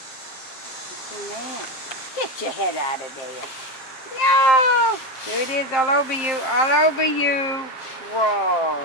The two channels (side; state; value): right; late; 7.6 ms